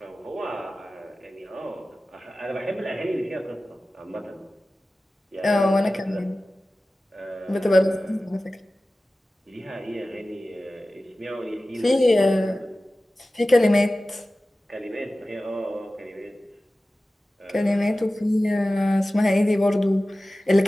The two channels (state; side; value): normal; both; correlation 0.96